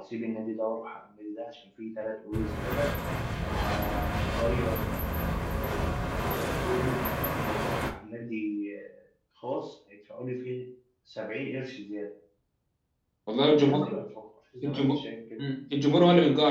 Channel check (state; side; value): identical; both; correlation 1.00